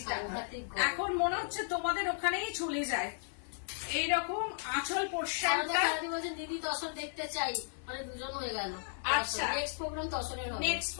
এখন মনে হচ্ছে তোমাদের ওখানেই চলে যায়। এইরকম আঁচল পোর্শনটা। দিদি তসর দেখতে চাই, মানে দুজন হয়ে গেল। আচ্ছা। নেক্সট প্রোগ্রাম তসরের হবে। নেক্সট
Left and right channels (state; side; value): silent; right; 55 dB below the other